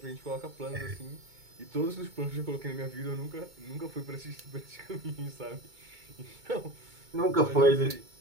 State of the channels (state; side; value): late; left; 2.2 ms